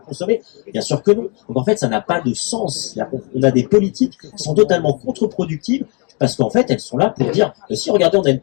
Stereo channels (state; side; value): quieter; right; 34.0 dB